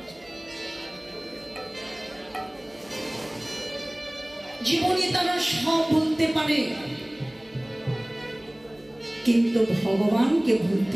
জীবনে তারা সব ভুলতে পারে, কিন্তু ভগবানকে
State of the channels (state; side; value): noise; right; hum, 29 dB below the sound